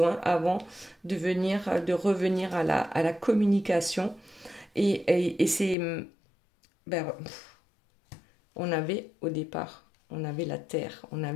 avant de revenir à la communication. Et c'est... Ben, on avait au départ, on avait la terre, on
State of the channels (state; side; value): drops out; right; at 5.8 s